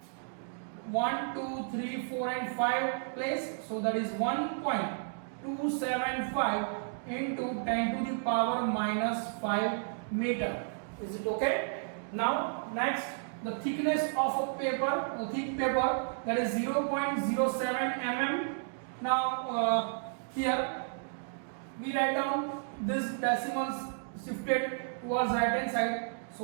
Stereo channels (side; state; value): left; silent; digital silence